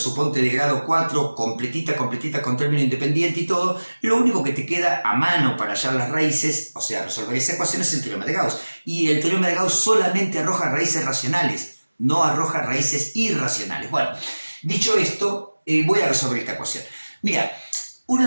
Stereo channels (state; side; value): inverted; both; correlation -1.00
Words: de grado 4, completita, con término independiente y todo, lo único que te queda a mano para hallar las raíces, o sea, resolver esa ecuación es el teorema de Gauss. Y el teorema de Gauss solamente arroja raíces racionales, no arroja raíces irracionales. Bueno, dicho esto, voy a resolver esta ecuación. Mira, una